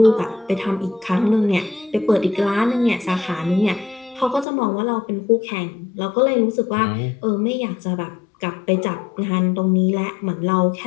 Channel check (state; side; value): drops out; right; at 4.5 s